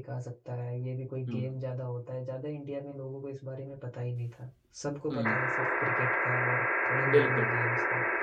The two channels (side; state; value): both; identical; correlation 1.00